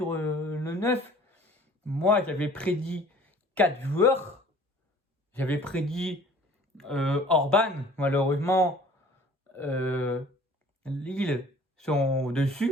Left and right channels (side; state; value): both; normal; correlation 0.51